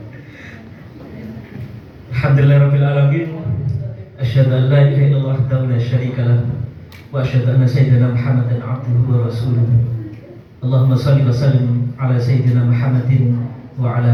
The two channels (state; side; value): identical; both; correlation 1.00